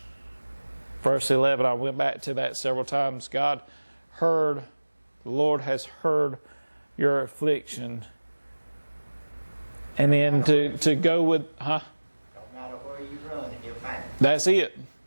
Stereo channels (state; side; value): inverted; both; correlation -1.00